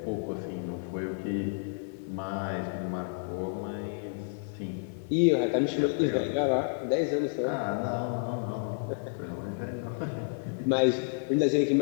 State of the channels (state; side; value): silent; right; 57 dB below the other